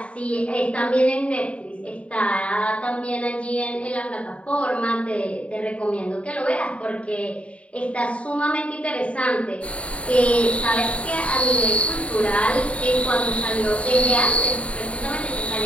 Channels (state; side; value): late; right; 0.063 ms